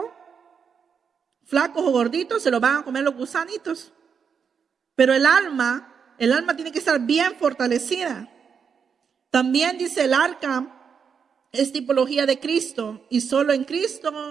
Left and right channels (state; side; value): quieter; left; 6.6 dB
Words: flacos o gorditos, se lo van a comer los gusanitos. Pero el alma tiene que estar bien fortalecida. También dice el arca, es tipología de Cristo, y solo en